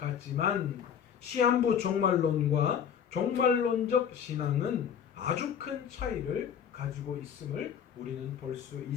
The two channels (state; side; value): quieter; right; 8.2 dB